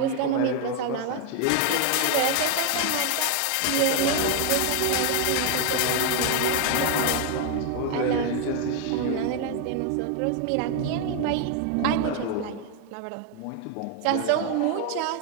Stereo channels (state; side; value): different; both; correlation 0.01